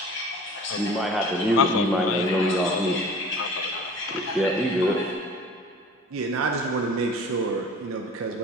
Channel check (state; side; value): normal; both; correlation 0.44